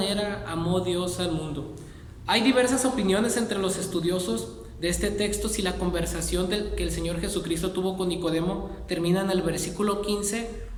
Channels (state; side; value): identical; both; correlation 1.00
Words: amó Dios al mundo. Hay diversas opiniones entre los estudiosos de este texto si la conversación que el Señor Jesucristo tuvo con Nicodemo termina en el versículo 15